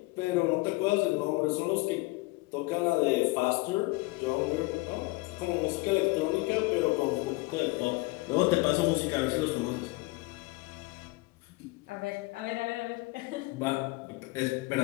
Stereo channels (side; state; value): right; quieter; 23.5 dB